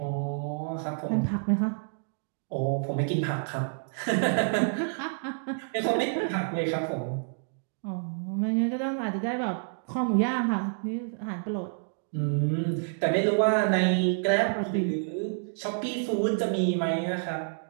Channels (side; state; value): left; silent; digital silence